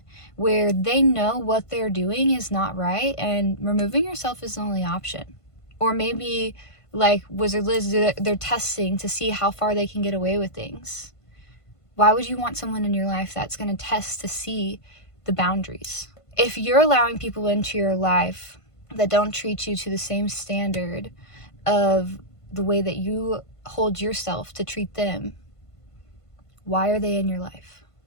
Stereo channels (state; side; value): late; right; 1.5 ms